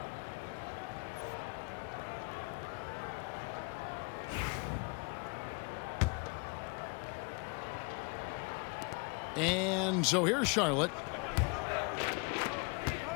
And so here's Charlotte.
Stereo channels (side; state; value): right; quieter; 31.8 dB